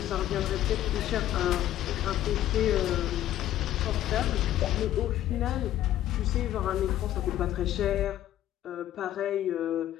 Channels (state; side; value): quieter; right; 12.7 dB